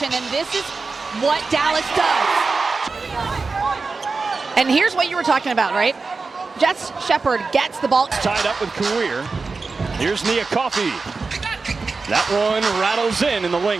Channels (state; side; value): quieter; left; 4.2 dB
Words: and this is what Dallas does. And here's what you were talking about, right? Jess Shepard gets the ball. Tied up with Kawir. Here's Nia Coffey. That one rattles in the